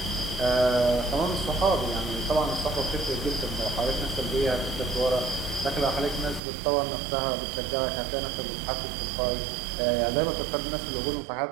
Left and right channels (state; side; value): drops out; left; at 6.4 s